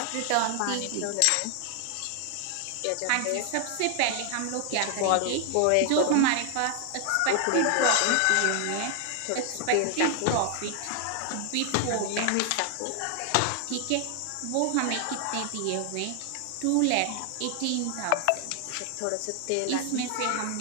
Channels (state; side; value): different; both; correlation 0.00